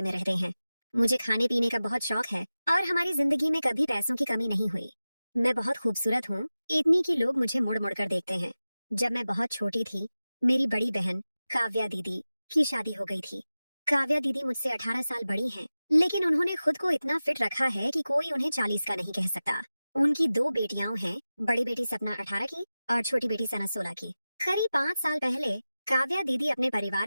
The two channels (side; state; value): both; inverted; correlation -0.95